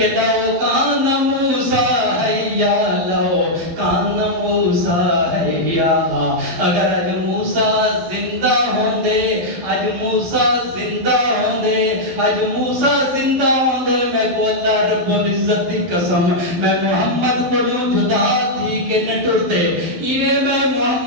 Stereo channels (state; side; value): late; left; 12 ms